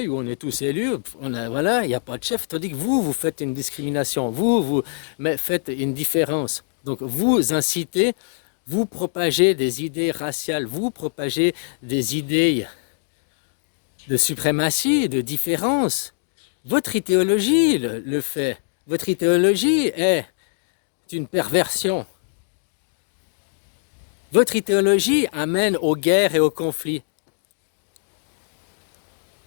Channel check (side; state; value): right; silent; digital silence